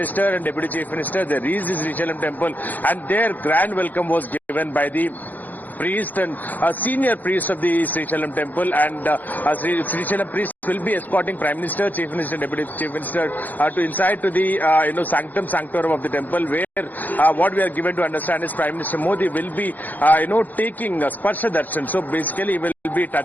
and Deputy Chief Minister, they reached the Srisailam Temple, and their grand welcome was given by the priest and senior priest of the Srisailam Temple. And Srisailam priest will be escorting Prime Minister, Chief Minister, Deputy Chief Minister to inside to the sanctum sanctorum of the temple, where what we are given to understand is Prime Minister Modi will be taking Sparsha Darshan. So basically he will be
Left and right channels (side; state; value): right; late; 0.083 ms